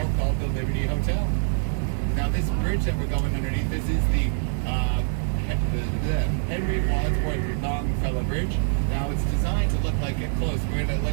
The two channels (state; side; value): silent; left; digital silence